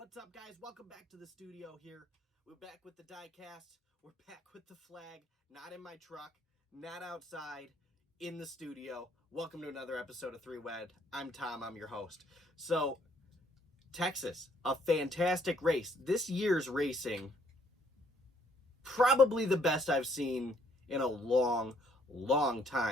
up, guys? Welcome back to the studio here. We're back with the diecast. We're back with the flag. Not in my truck, not outside, in the studio. Welcome to another episode of Three Wed. I'm Tom. I'm your host. So, Texas, a fantastic race. This year's racing, probably the best I've seen in a long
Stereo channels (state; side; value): normal; both; correlation 0.66